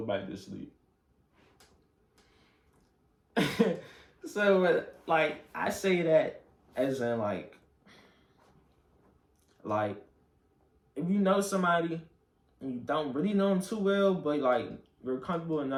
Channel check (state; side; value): identical; both; correlation 1.00